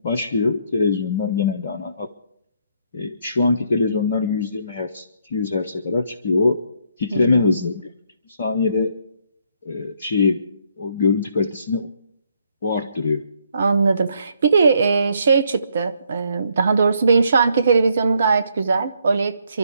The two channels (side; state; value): both; inverted; correlation -0.71